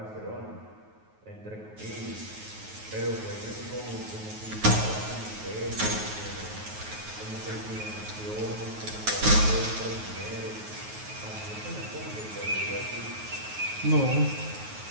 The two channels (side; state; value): left; late; 9.4 ms